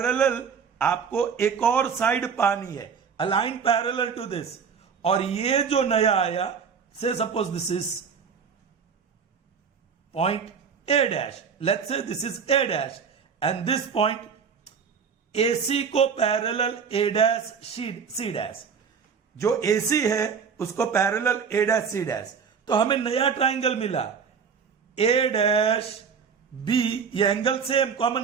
आपको एक और साइड पानी है, अलाइन पैरेलल टू दिस. और ये जो नया आया, से suppose this is point A dash, let's say this is A dash and this point AC को parallel A dash C dash. जो AC है उसको parallel A dash C dash. तो हमें नया ट्राइंगल मिला A dash B, ये angle same common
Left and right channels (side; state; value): left; quieter; 6.4 dB